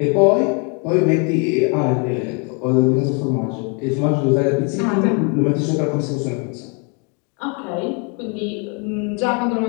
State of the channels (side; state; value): right; quieter; 35.7 dB